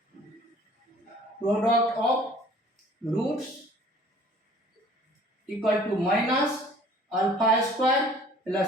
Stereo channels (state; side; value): normal; both; correlation 0.52